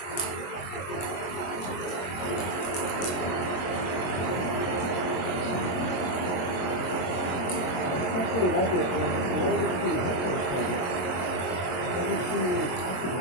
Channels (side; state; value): right; late; 22 ms